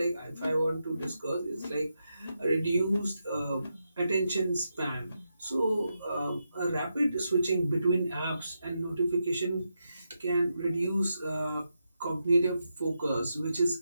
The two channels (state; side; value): inverted; both; correlation -0.85